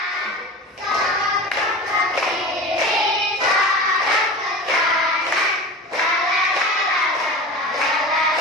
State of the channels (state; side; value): normal; both; correlation 0.32